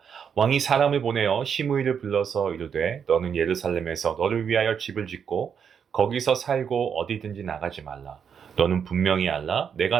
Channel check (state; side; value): quieter; left; 7.3 dB